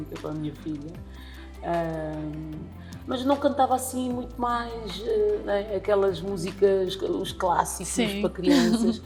para a minha filha. Mas não cantava assim muito mais, né, aquelas músicas, os clássicos Sim. para crianças,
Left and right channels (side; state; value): both; identical; correlation 1.00